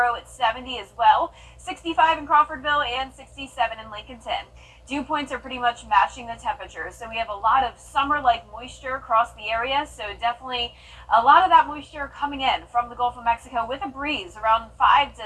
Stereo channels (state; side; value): identical; both; correlation 1.00